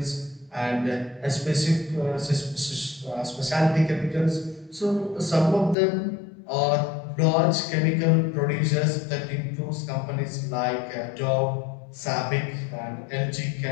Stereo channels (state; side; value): drops out; right; at 5.8 s